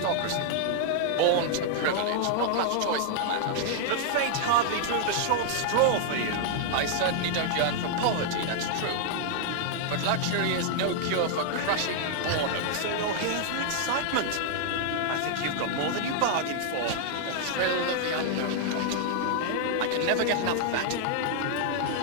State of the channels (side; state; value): both; different; correlation -0.01